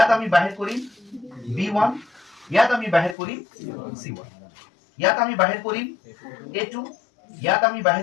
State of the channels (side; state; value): right; drops out; at 3.2 s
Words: আমি বাহিৰ কৰিম b1 ইয়াত আমি বাহিৰ কৰিম c1 ইয়াত আমি বাহিৰ কৰিম a2 ইয়াত আমি